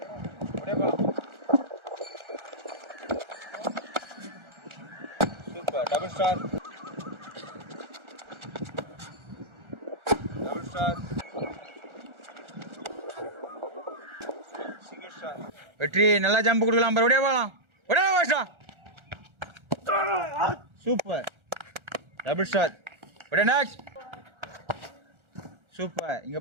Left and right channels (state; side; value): late; left; 1.4 ms